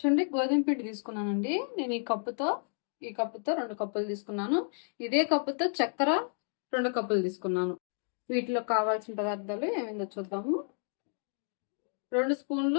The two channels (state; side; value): silent; right; 57 dB below the other